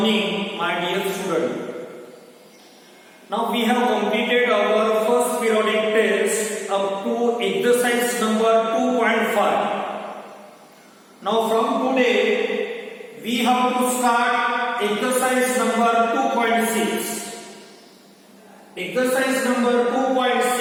my dear student. Now we have completed our first periodic test up to exercise number 2.5. Now from today we have to start exercise number 2.6. Exercise number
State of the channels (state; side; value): identical; both; correlation 1.00